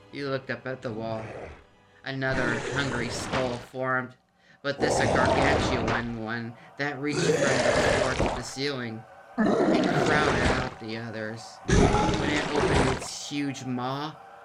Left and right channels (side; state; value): both; identical; correlation 1.00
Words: He looked up at the wall. Another hungry skull formed, but this a gargantuan one that reached from the floor to the ceiling. It crowded out the others. When it opened its huge maw,